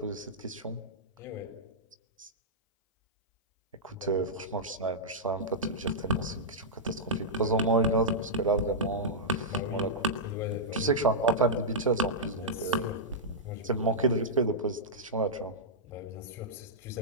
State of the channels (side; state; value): both; normal; correlation -0.10